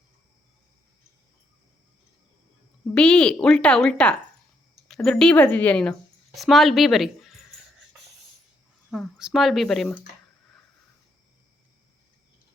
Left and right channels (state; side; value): normal; both; correlation 0.75